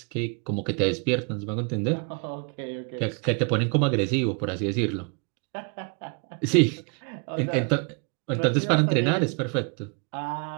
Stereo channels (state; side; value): quieter; left; 37.7 dB